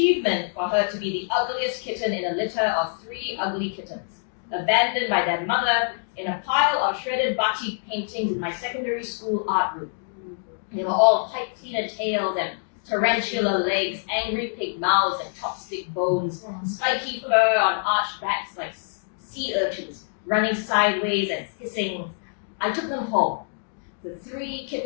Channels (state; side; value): silent; right; digital silence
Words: for her to be the ugliest kitten in a litter of 3 ugly kittens, abandoned by their mother in a pile of shredded batik paintings in my secondary school art room. They were all pipe cleaner tails and tarantula legs, angry pig mouths and chopstick bones, spiky fur on arched backs like sea urchins, running sideways and hissing. I took them home. The 3